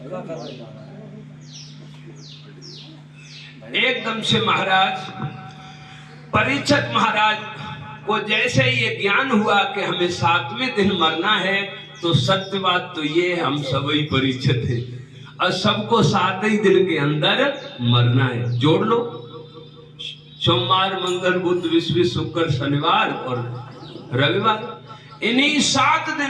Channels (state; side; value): identical; both; correlation 1.00